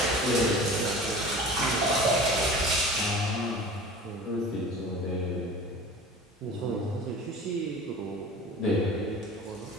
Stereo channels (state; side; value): normal; both; correlation 0.39